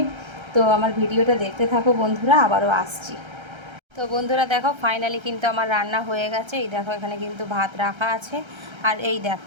তো আমার ভিডিওটা দেখতে থাকো বন্ধুরা, আবারও আসছি। তো বন্ধুরা দেখো ফাইনালি কিন্তু আমার রান্না হয়ে গেছে। এই দেখো এখানে কিন্তু ভাত রাখা আছে। আর এই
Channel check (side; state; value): left; late; 1.3 ms